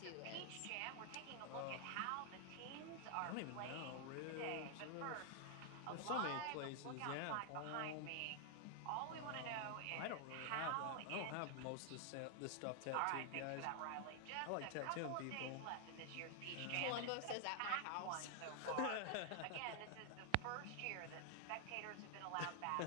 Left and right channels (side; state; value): both; different; correlation 0.00